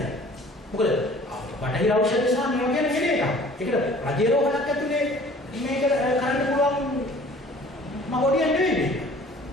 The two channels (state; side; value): normal; both; correlation 0.50